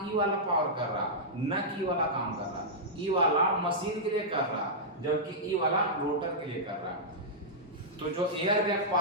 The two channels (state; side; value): normal; both; correlation -0.11